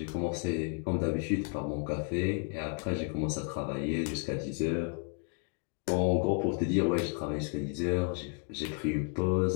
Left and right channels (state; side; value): quieter; right; 39.0 dB